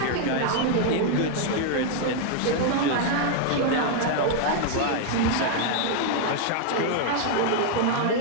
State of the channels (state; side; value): different; both; correlation 0.00